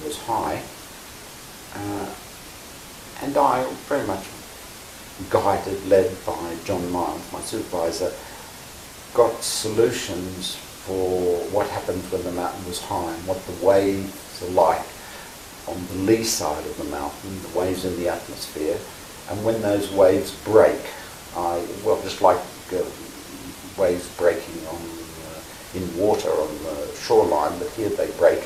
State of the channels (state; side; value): identical; both; correlation 1.00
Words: was high, and I, very much guided, led by John Miles, my supervisor, got solutions for what happens when the mountain was high and what the waves are like on the lee side of the mountain, the waves in the atmosphere, and when those waves break, just like waves breaking on in water on the shoreline, but here they break